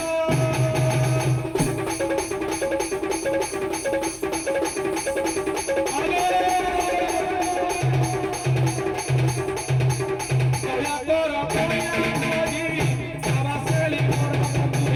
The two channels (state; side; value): identical; both; correlation 1.00